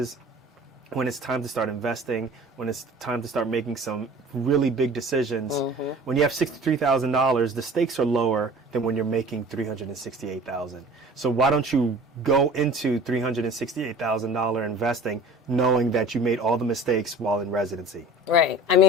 when it's time to start investing, when it's time to start making some really big decisions, when you have $63,000, the stakes are lower than when you're making $368,000. So why don't you go into $368,000 investing knowing that you made all the mistakes while in residency? Right. I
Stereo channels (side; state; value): both; normal; correlation 0.44